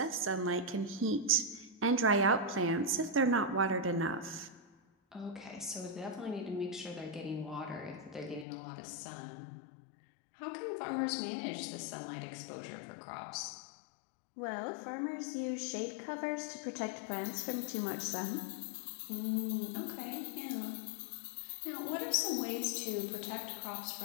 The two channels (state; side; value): drops out; right; at 8.5 s